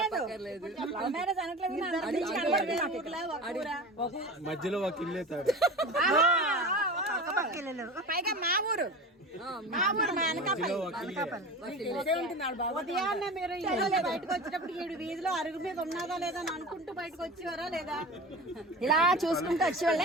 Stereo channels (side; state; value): both; normal; correlation 0.32